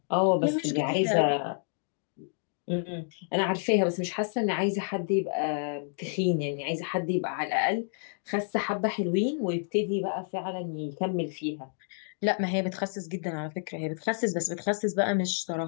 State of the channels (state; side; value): silent; right; digital silence